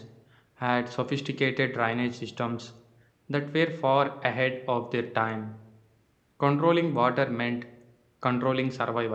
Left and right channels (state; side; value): identical; both; correlation 1.00